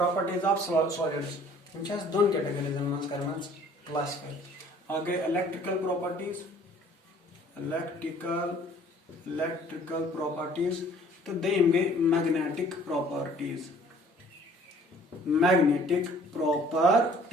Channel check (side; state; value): both; normal; correlation 0.54